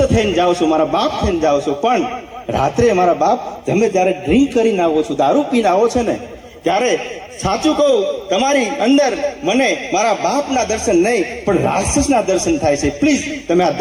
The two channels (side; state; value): both; identical; correlation 1.00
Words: થઈને જાઓ છો, મારા બાપ થઈને જાઓ છો, પણ રાત્રે મારા બાપ તમે જ્યારે ડ્રિંક કરીને આવો છો, દારૂ પીને આવો છો ને, ત્યારે સાચું કહું તમારી અંદર મને મારા બાપના દર્શન નહીં પણ રાક્ષસના દર્શન થાય છે. પ્લીઝ તમે આ